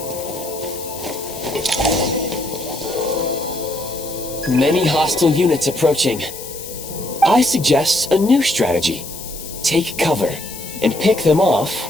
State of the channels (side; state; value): left; noise; hiss, 12 dB below the sound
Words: Many hostile units approaching. I suggest a new strategy. Take cover and pick them